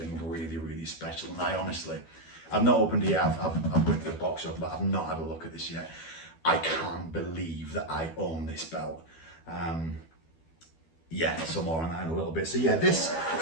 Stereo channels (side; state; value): right; late; 12 ms